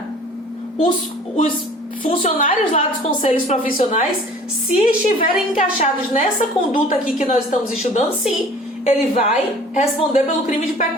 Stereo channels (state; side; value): normal; both; correlation 0.48